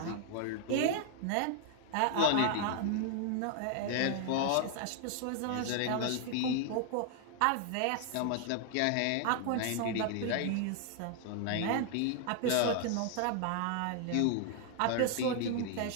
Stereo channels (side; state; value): both; different; correlation 0.00